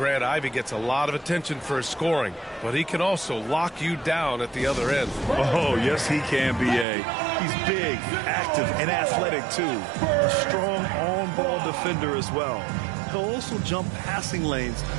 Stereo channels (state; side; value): drops out; left; at 6.9 s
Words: Ivy gets a lot of attention for his scoring, but he can also lock you down at the other end. Oh, yes, he can, B.A. He's big, active, and athletic, too. A strong on-ball defender as well. He'll also jump passing lanes,